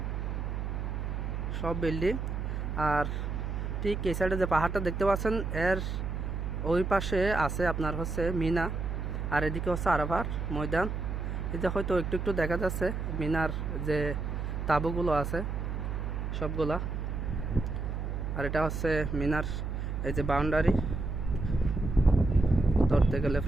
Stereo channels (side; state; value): right; noise; hum, 3 dB below the sound